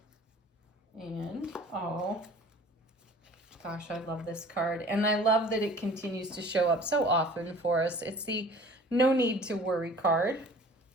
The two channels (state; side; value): normal; both; correlation 0.47